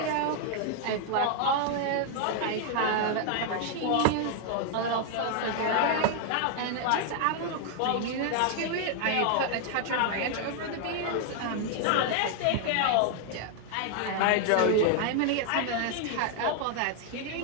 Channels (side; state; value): both; different; correlation 0.00